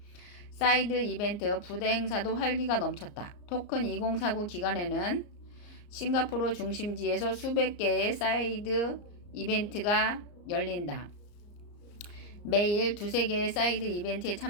사이드 이벤트 부대 행사도 활기가 넘쳤다. 토큰 2049 기간에는 싱가포르 중심지에서 수백 개의 사이드 이벤트가 열린다. 매일 두세 개의 사이드 이벤트에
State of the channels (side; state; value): right; late; 34 ms